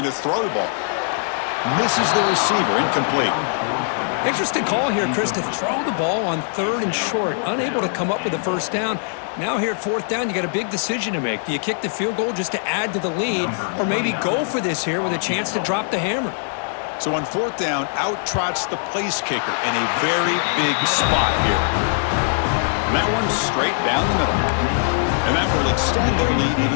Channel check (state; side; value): silent; right; digital silence